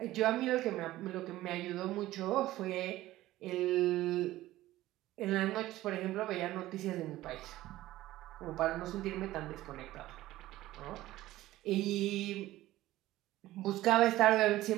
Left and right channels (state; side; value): quieter; left; 15.9 dB